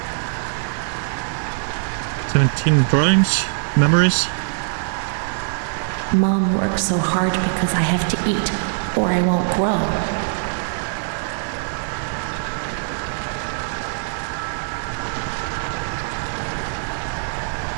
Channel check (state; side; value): silent; left; digital silence